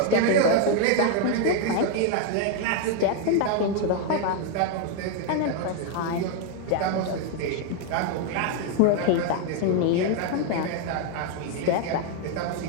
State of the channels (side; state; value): both; different; correlation 0.01